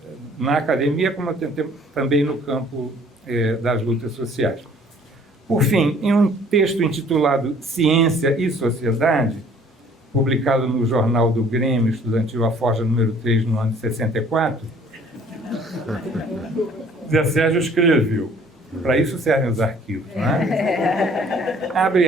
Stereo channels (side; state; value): both; normal; correlation 0.56